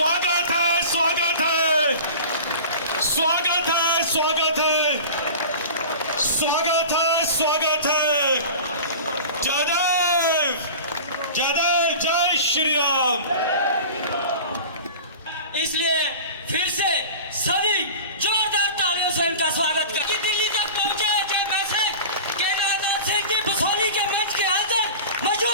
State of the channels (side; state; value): both; inverted; correlation -0.36